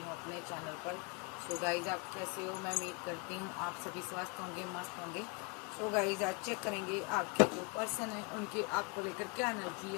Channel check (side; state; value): right; quieter; 30.8 dB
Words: अपने चैनल पर। सो गाइज, आप कैसे हो? मैं उम्मीद करती हूँ आप सभी स्वस्थ होंगे, मस्त होंगे। सो गाइज, आज चेक करेंगे आपके जो पर्सन है उनके आपको लेकर क्या एनर्जी